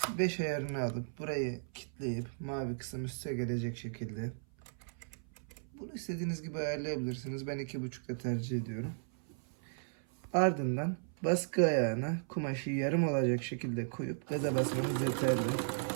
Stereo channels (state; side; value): silent; left; 54 dB below the other